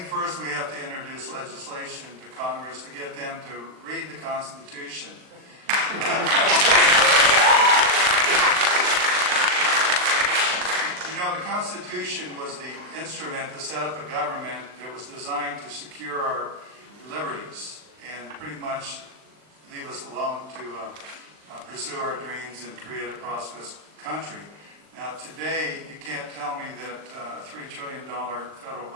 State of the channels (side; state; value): left; late; 39 ms